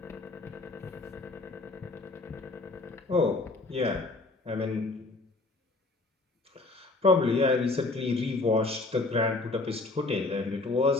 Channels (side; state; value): right; quieter; 3.3 dB